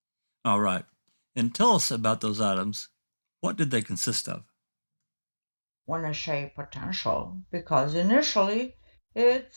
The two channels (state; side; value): inverted; both; correlation -1.00